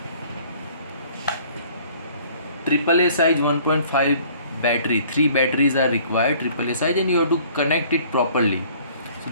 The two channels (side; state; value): both; inverted; correlation -0.55